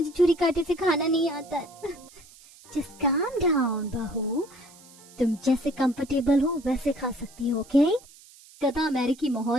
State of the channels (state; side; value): noise; right; hiss, 23 dB below the sound